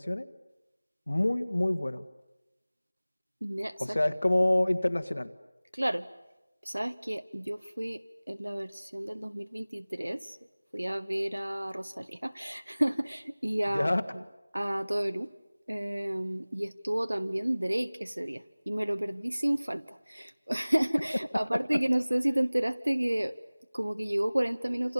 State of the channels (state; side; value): inverted; both; correlation -0.99